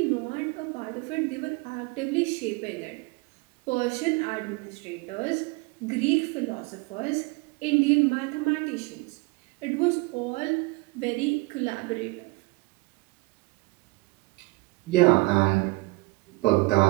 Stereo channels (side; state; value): left; quieter; 24.4 dB